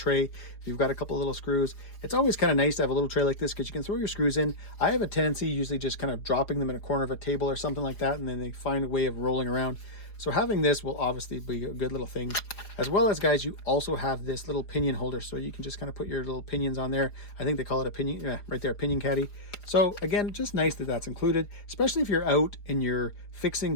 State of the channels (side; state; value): right; late; 4.8 ms